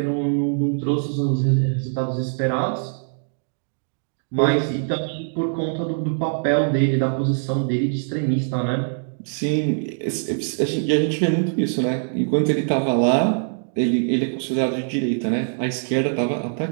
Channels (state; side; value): silent; left; digital silence